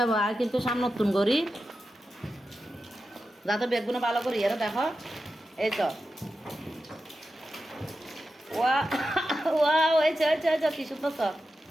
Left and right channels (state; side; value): normal; both; correlation 0.91